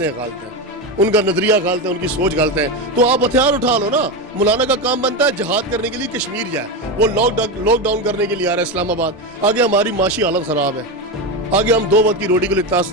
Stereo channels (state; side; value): normal; both; correlation 0.15